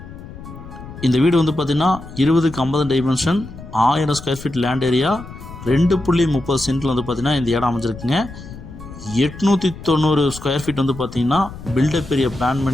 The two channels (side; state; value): left; noise; rumble, 14 dB below the sound